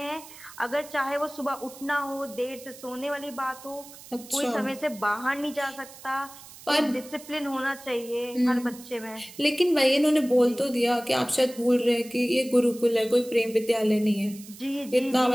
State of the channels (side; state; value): right; noise; hiss, 18 dB below the sound